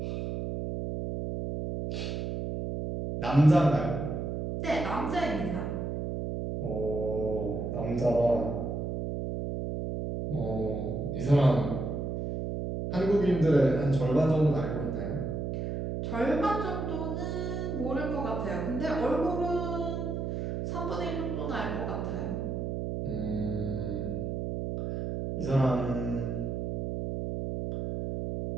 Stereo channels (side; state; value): right; noise; hum, 3 dB below the sound